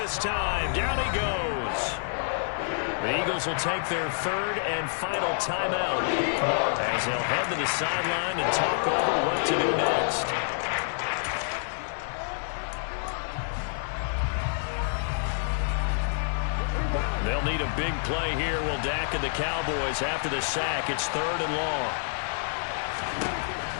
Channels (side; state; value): right; silent; digital silence